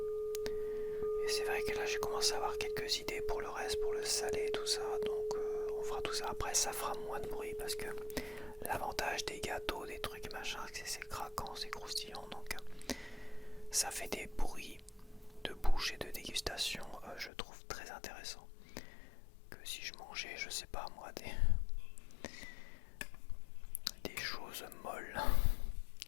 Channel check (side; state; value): right; drops out; at 17.3 s